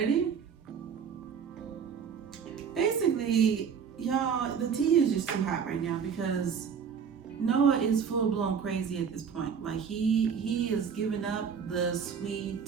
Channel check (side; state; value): left; quieter; 6.8 dB